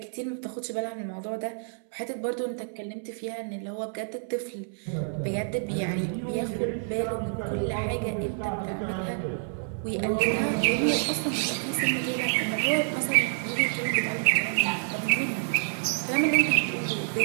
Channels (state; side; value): silent; left; 59 dB below the other